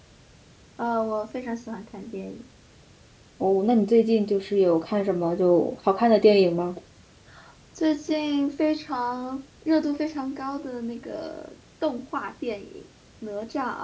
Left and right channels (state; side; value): identical; both; correlation 1.00